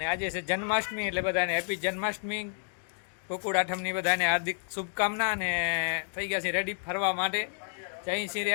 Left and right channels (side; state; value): right; silent; 58 dB below the other